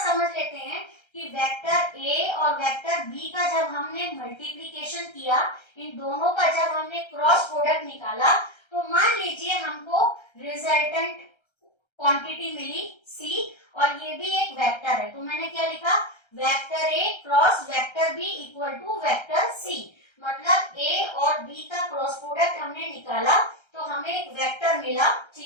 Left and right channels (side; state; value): right; late; 1.3 ms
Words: समझ लेते हैं कि वेक्टर ए और वेक्टर बी का जब हमने मल्टीप्लीकेशन किया, इन दोनों का जब हमने क्रॉस प्रोडक्ट निकाला, तो मान लीजिए हमको रिजल्टेंट क्वांटिटी मिली सी और ये भी एक वेक्टर है, तो मैंने क्या लिखा, vector A cross vector B equal to vector C, मतलब ए और बी का क्रॉस प्रोडक्ट हमने निकाला तो हमें एक वेक्टर मिला,